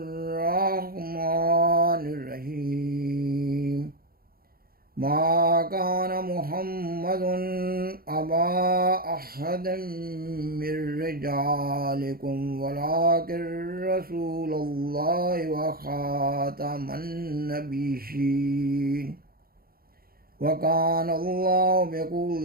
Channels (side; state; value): left; late; 0.43 ms